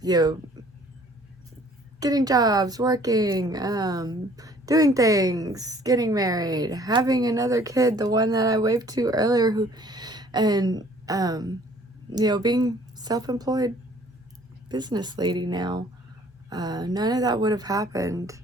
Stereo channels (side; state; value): both; normal; correlation 0.56